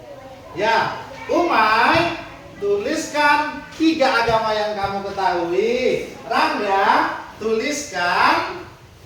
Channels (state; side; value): identical; both; correlation 1.00